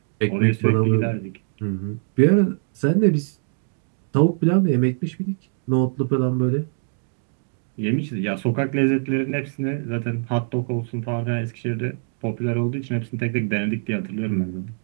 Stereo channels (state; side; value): silent; left; digital silence